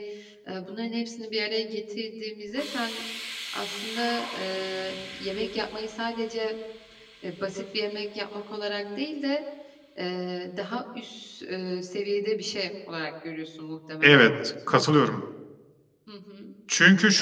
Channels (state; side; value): identical; both; correlation 1.00